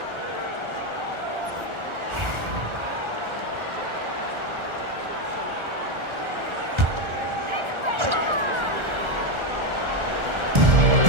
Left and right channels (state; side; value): late; left; 1.4 ms